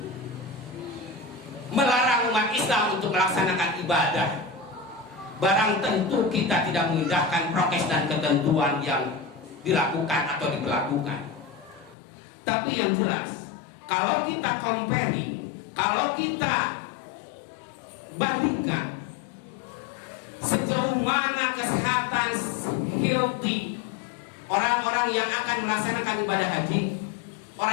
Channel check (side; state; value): right; drops out; at 12.0 s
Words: melarang umat Islam untuk melaksanakan ibadah. Barang tentu kita tidak mengindahkan prokes dan ketentuan yang dilakukan atau diberlakukan. Tapi yang jelas, kalau kita comparing, kalau kita bandingkan sejauh mana kesehatan healthy orang-orang yang akan melaksanakan ibadah haji,